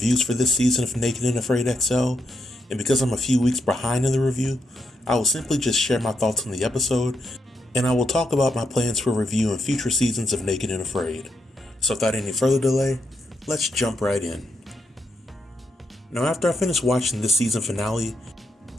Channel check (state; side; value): normal; both; correlation 0.81